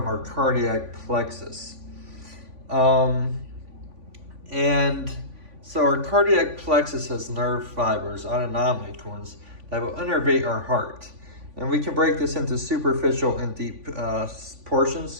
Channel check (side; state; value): left; late; 3.5 ms